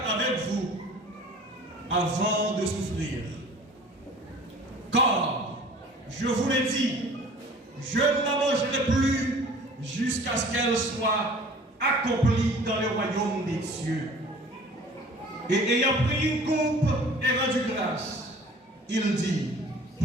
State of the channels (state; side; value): normal; both; correlation 0.47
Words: avec vous avant de souffrir. Car, je vous l'ai dit, je ne la mangerai plus jusqu'à ce qu'elle soit accomplie dans le royaume des cieux. Et ayant pris une coupe et rendu grâce, il dit,